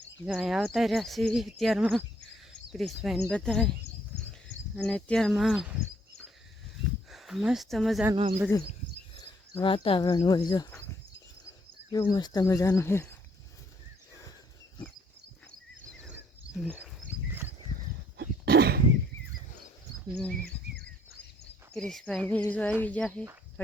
અહીંયા આવતા રહ્યા છીએ અત્યારમાં ક્રિશભાઈને બધાય। અને અત્યારમાં મસ્ત મજાનું આમ બધું વાતાવરણ હોય, જો કેવું મસ્ત મજાનું છે। ક્રિશભાઈ જો આવી જશે,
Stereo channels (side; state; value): both; normal; correlation 0.66